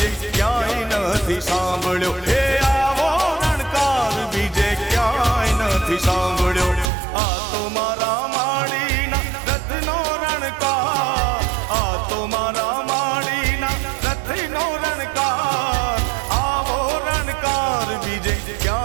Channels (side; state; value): left; drops out; at 6.9 s